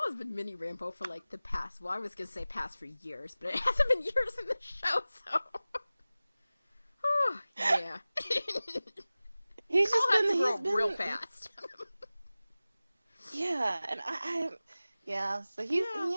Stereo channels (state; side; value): inverted; both; correlation -0.97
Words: has been mini Rambo for like the past, well, I was going to say past for years, but it hasn't been years in the show, so. Oh, yeah. He's Carl just has been, to grow real fast. Yeah, and so he's